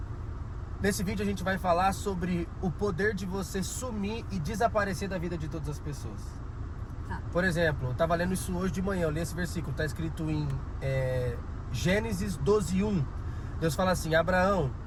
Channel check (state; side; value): identical; both; correlation 1.00